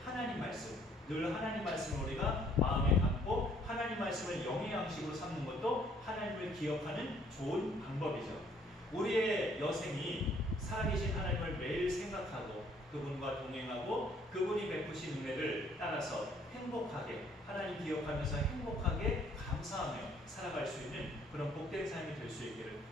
하나님 말씀, 늘 하나님 말씀을 우리가 마음에 담고 하나님 말씀을 영의 양식으로 삼는 것도 하나님을 기억하는 좋은 방법이죠. 우리의 여생이 살아계신 하나님을 매일 생각하고 그분과 동행하고 그분이 베푸신 은혜를 따라서 행복하게 하나님 기억하면서 행복하게 감사하며 살아갈 수 있는 그런 복된 삶이 될 수 있기를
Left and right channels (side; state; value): both; normal; correlation 0.63